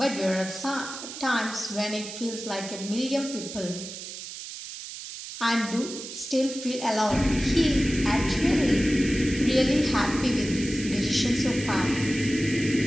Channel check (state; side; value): noise; right; hiss, 10 dB below the sound